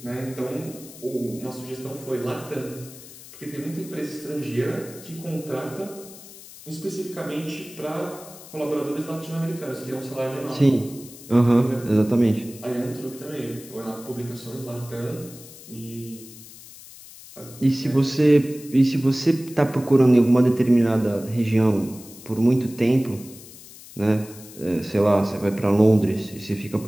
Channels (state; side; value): noise; left; hiss, 18 dB below the sound